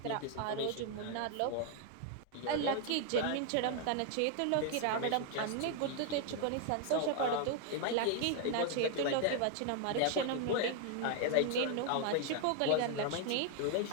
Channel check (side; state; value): both; different; correlation 0.00